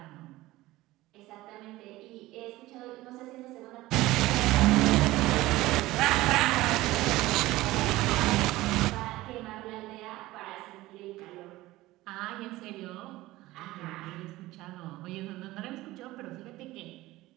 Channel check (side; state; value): left; quieter; 17.9 dB